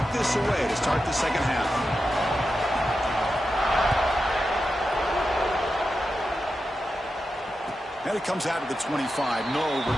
this away to start the second half. And it comes out of the 25. No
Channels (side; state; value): both; normal; correlation 0.90